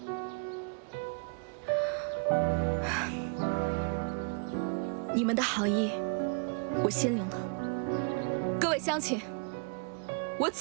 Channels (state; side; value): quieter; left; 38.6 dB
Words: 你们的好意，我心领了。各位乡亲，我